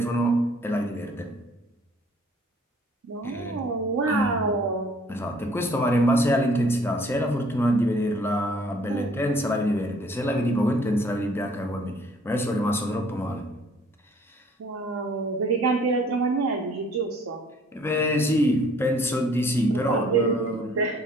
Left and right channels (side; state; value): both; normal; correlation 0.57